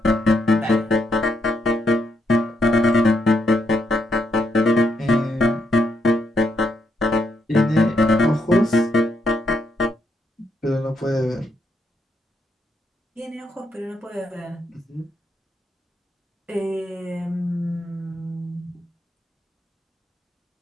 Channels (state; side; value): normal; both; correlation 0.78